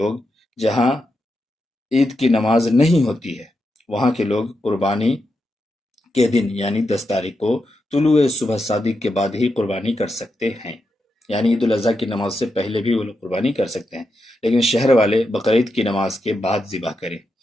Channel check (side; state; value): both; normal; correlation 0.86